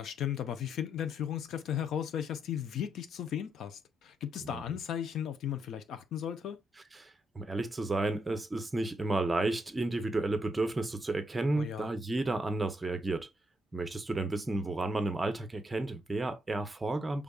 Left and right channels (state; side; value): normal; both; correlation 0.77